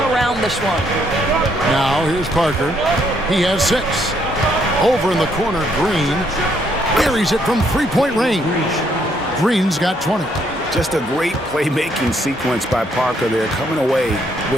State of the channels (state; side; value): normal; both; correlation 0.71